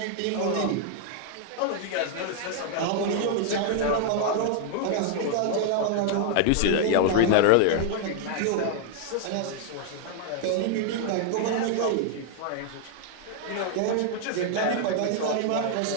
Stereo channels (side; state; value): both; different; correlation 0.00